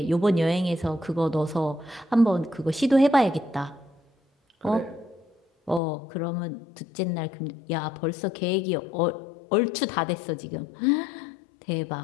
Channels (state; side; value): drops out; right; at 5.8 s